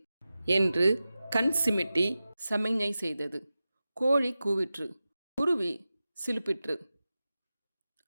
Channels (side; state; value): both; inverted; correlation -0.94